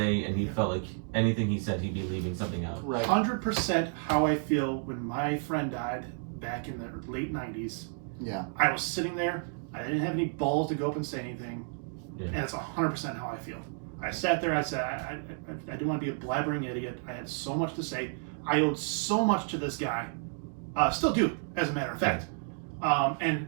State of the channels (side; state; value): left; silent; 57 dB below the other